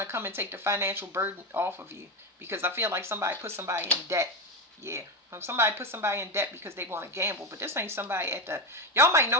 to come and take the financial burden off of you, because I feel like somebody put somebody in debt. Yeah. Somebody put somebody in debt because they want to gamble. But this ain't somebody at the, y'all might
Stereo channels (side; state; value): both; normal; correlation 0.14